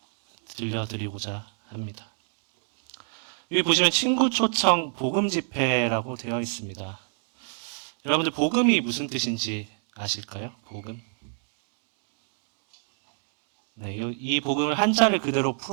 들려드리고자 합니다. 여기 보시면 친구 초청 복음 집회라고 되어 있습니다. 여러분들 복음이 무슨 뜻인지 아실까요? 복음. 네, 이 복음을 한자를 그대로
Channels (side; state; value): left; silent; 59 dB below the other